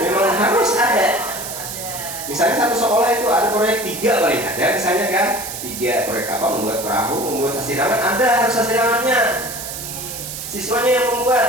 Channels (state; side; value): noise; right; hiss, 8 dB below the sound